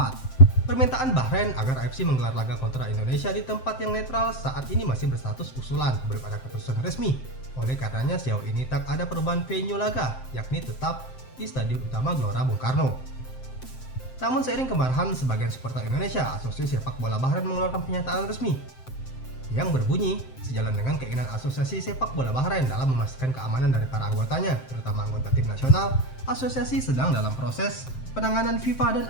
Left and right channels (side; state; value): right; late; 7.7 ms